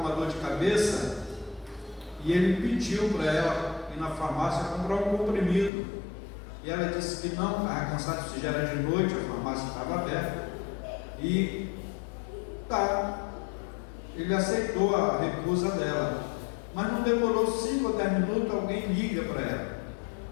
dor de cabeça e ele pediu para ela ir na farmácia comprar um comprimido. E ela disse que não, estava cansado, se já era de noite, a farmácia estava aberta. E ele aceitou a recusa dela. Mas não demorou 5 ou 10 minutos, alguém liga para ela.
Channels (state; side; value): drops out; right; at 5.7 s